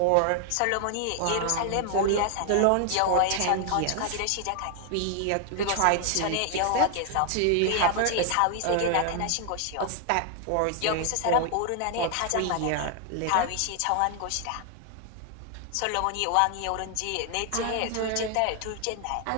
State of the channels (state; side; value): different; both; correlation 0.00